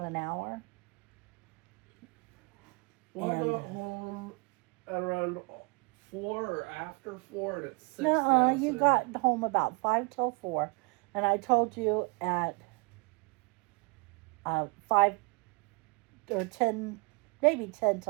an hour. Well, I And- got home at around 4 or after 4, and it's 6 Nuh-uh, now. you so- got home about 5 till 4. And I told you at 5 or 10, maybe 10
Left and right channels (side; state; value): left; quieter; 32.8 dB